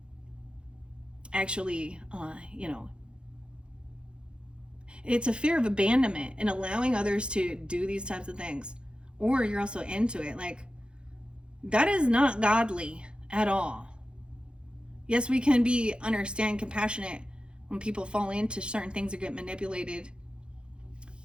actually, it's a fear of abandonment and allowing others to do these types of things. Or you're also into it. Like, that is not godly at all. Yes, we can understand, compassionate when people fall into certain things or get manipulated.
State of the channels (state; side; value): late; left; 0.054 ms